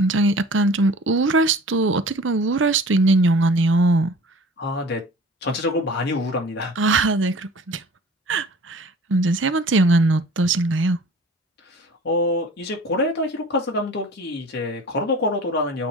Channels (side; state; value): both; normal; correlation 0.44